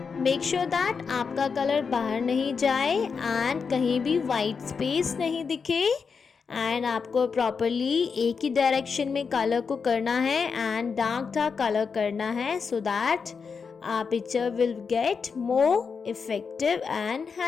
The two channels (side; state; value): right; quieter; 5.6 dB